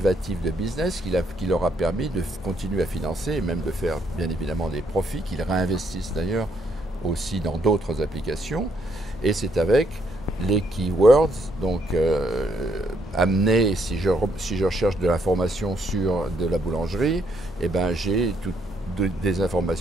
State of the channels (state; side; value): normal; both; correlation 0.72